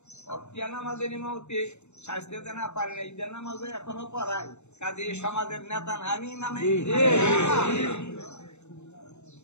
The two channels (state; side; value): late; right; 0.82 ms